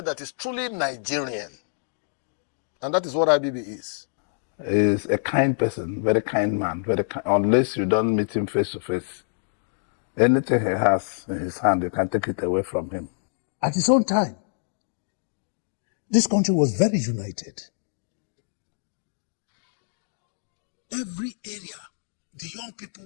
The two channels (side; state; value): right; silent; digital silence